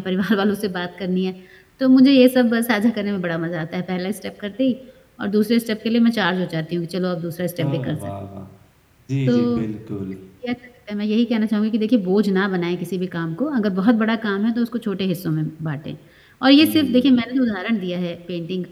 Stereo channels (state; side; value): identical; both; correlation 1.00